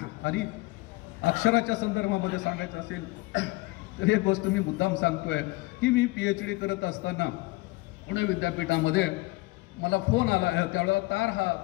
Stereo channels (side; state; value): right; quieter; 22.2 dB